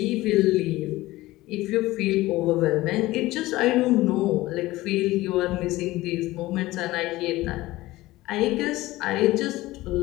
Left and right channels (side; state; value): right; quieter; 18.2 dB